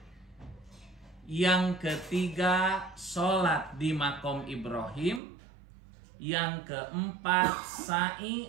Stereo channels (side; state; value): left; drops out; at 5.2 s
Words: Yang ketiga, sholat di makom Ibrahim. Yang keempat,